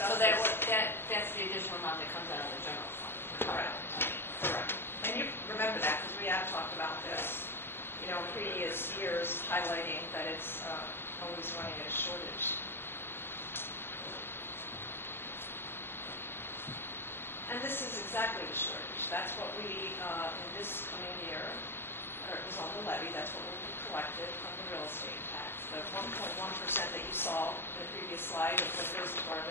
So this. that's the additional amount that comes out of the general fund. Correct. Correct. And you remember that, because we have talked about this, in previous years, highlighting that it's always running at a shortage. And this is exactly the shortage. That's what we, in this coming year, it was on the levy, that's what will be collected from the real estate tax. The 1.1% that you saw in the previous slide of what goes to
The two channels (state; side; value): late; right; 0.11 ms